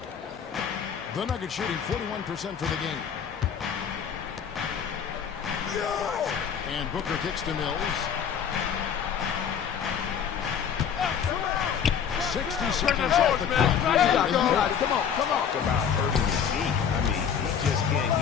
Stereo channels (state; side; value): quieter; right; 7.7 dB